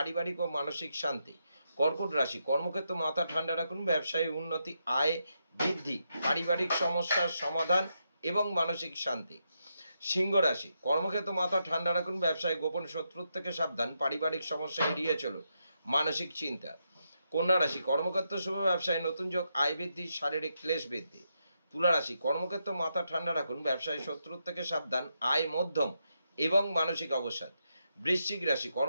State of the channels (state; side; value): inverted; both; correlation -0.83